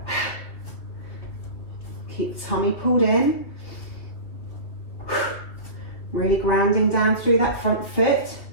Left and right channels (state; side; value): late; right; 2.6 ms